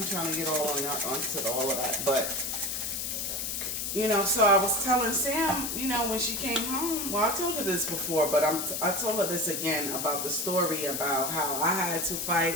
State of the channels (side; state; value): left; noise; hiss, 2 dB below the sound